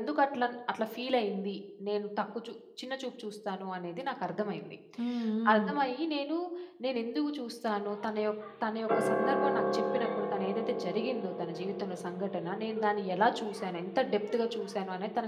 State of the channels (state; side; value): identical; both; correlation 1.00